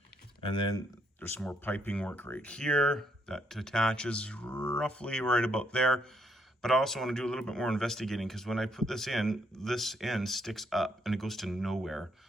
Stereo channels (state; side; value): normal; both; correlation 0.72